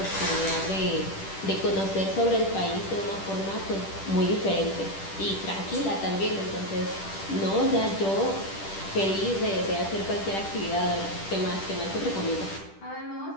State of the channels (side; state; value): right; late; 10 ms